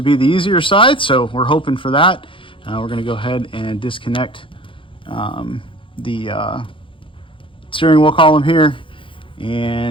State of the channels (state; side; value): late; right; 0.25 ms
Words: be the easier side, so we're hoping for that. We're going to go ahead and disconnect the steering wheel column here